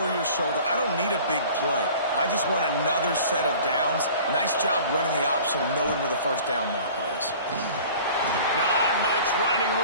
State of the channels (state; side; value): inverted; both; correlation -0.45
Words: your shoulder. I don't need a big play. I just want another set of downs. Nice job running the option, knowing where the 1st down marker is. Not much running